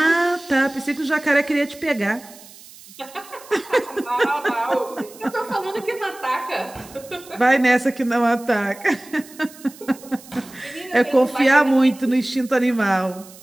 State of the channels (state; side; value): noise; right; hiss, 20 dB below the sound